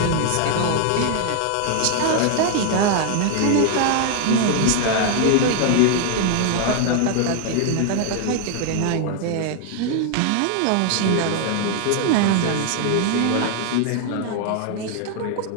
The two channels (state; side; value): different; both; correlation 0.00